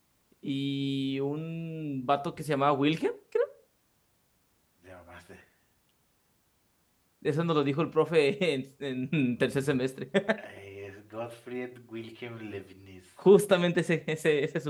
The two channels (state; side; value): identical; both; correlation 1.00